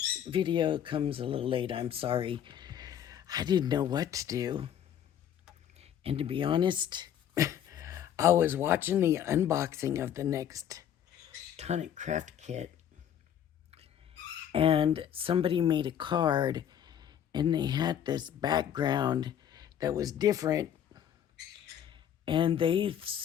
video comes a little late, I'm sorry. I didn't know what to do. And to be honest, I was watching the unboxing of the next tonic craft kit, and somebody made a card, and they had this background that was different. And they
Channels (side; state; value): right; quieter; 9.7 dB